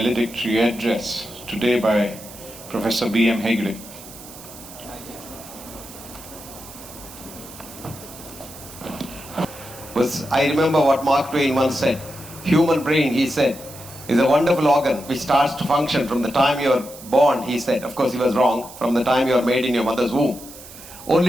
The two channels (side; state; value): right; noise; hiss, 17 dB below the sound